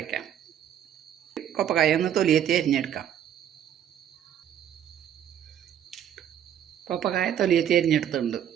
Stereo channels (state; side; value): quieter; left; 9.9 dB